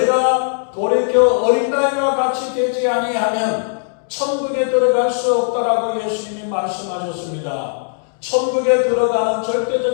돌이켜 어린아이와 같이 되지 아니하면 천국에 들어갈 수 없다라고 예수님이 말씀하셨습니다. 천국에 들어가는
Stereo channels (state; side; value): silent; right; digital silence